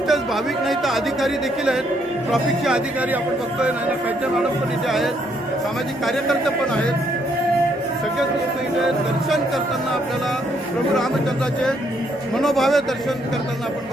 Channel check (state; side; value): normal; both; correlation 0.71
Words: भाविक नाही तर अधिकारी देखील आहेत, ट्रॅफिकचे अधिकारी आपण बघतोय, नाना पैठे मॅडम पण इथे आहेत, सामाजिक कार्यकर्ते पण आहेत। सगळेच लोक इथे दर्शन करताना आपल्याला प्रभू रामचंद्राचे मनोभावे दर्शन करताना आपण